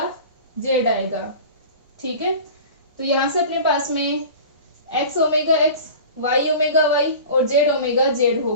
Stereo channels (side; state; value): both; inverted; correlation -0.38